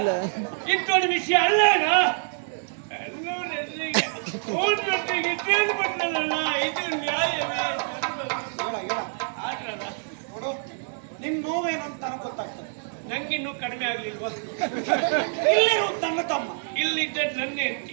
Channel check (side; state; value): left; silent; digital silence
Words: ಇಟ್ಟೋಡಿ ವಿಷಯ ಅಲ್ಲೇನ ಎಲ್ಲರೂ ಎದುರಿಗೆ ಊಟೊಟ್ಟಿಗೆ ಕೇಳ್ಬಿಟ್ಲಲ್ಲ ಇದು ನ್ಯಾಯವೇ ಆದ್ರಲ್ಲ ನೋಡು ನಿನ್ ನೋವೇನು ಅಂತ ನನಗೆ ಗೊತ್ತಾಗ್ತದೆ. ನಂಗಿನ್ನೂ ಕಡಿಮೆ ಆಗ್ಲಿಲ್ವಾ ಇಲ್ಲಿರುವುದು ನನ್ನ ತಮ್ಮ, ಇಲ್ಲಿದ್ದ ನನ್ನ ಹೆಂಡತಿ